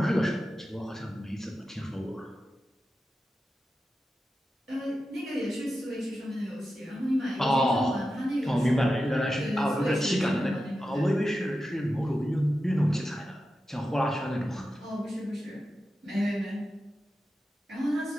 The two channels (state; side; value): normal; both; correlation 0.91